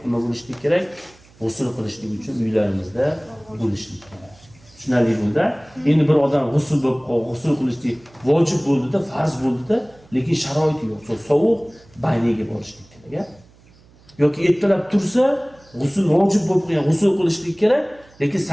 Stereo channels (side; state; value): right; noise; hum, 28 dB below the sound